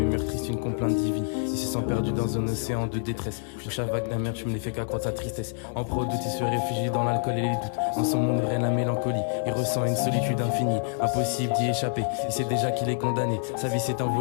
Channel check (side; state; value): right; silent; 58 dB below the other